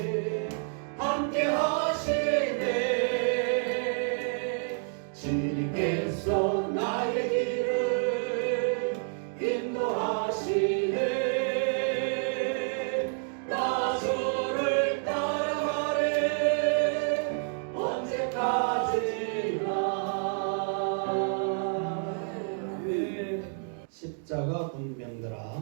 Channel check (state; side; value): silent; left; 59 dB below the other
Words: 함께 하시네 주님께서 나의 길을 인도하시네 나 주를 따라가리 언제까지나 십자가 군병들아